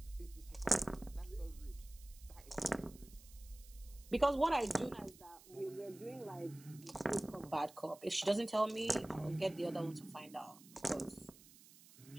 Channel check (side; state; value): right; noise; hiss, 21 dB below the sound